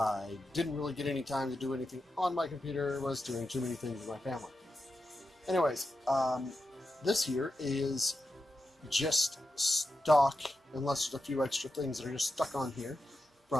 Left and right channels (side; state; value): both; normal; correlation 0.89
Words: didn't really get any time to do anything on my computer, was doing too many things with my family. Anyways, this here is just stock, unless there's a few extra things that are just stuck on here